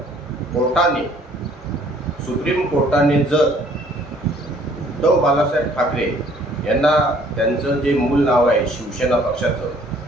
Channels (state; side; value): normal; both; correlation 0.59